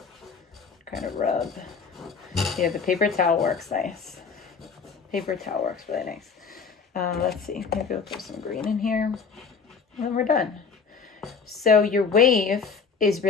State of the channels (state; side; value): quieter; right; 5.5 dB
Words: kind of rub. Yeah, the paper towel works nice. Paper towel works really nice. Let's see, maybe we'll throw some green in here. And then we're done. So your wave is